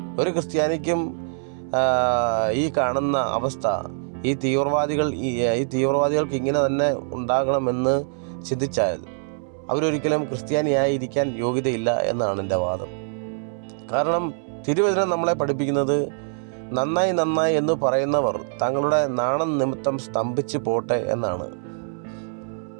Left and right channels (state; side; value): silent; left; 63 dB below the other